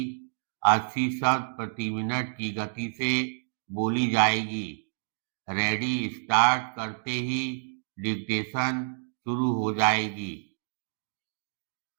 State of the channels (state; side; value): silent; left; digital silence